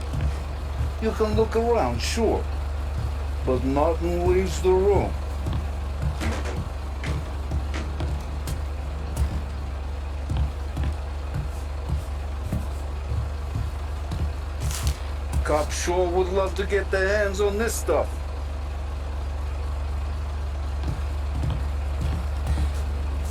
You can look around, sure. But Martin leaves the room. Cops sure would love to get their hands on this stuff.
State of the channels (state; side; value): identical; both; correlation 1.00